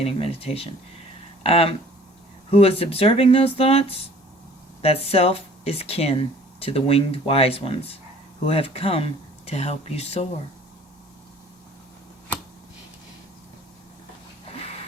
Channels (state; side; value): normal; both; correlation 0.51